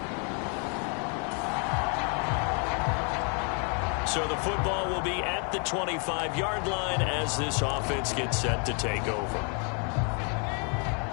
So the football will be at the 25-yard line as this offense gets set to take over.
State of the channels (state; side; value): quieter; right; 39.0 dB